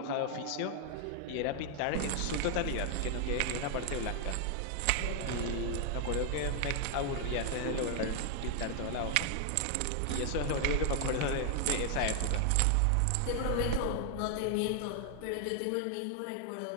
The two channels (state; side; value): different; both; correlation 0.00